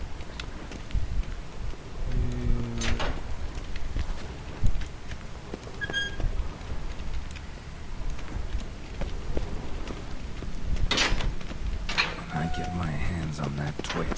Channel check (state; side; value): identical; both; correlation 1.00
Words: When I get my hands on that